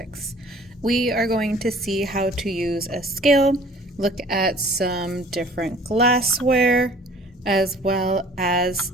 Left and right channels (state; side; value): normal; both; correlation 0.50